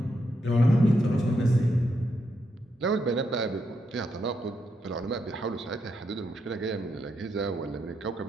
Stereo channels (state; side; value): normal; both; correlation 0.81